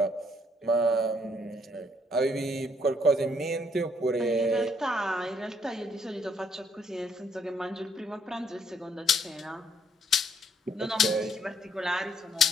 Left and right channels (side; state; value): both; normal; correlation 0.68